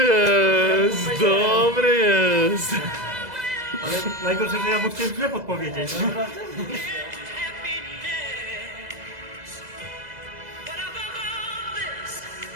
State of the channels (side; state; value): left; late; 2.0 ms